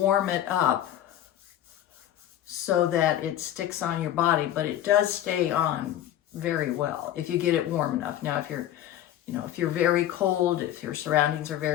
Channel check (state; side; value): quieter; right; 12.0 dB